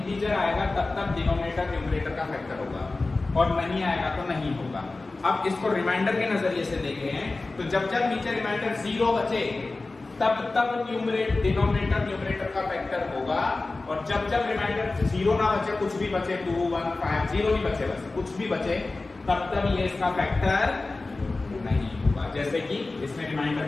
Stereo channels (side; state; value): right; quieter; 3.4 dB